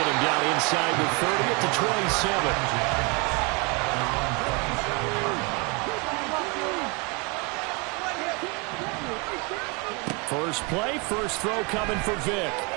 him down inside the 30 at the 27. First play, first throw coming for Vic.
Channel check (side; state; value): left; quieter; 30.0 dB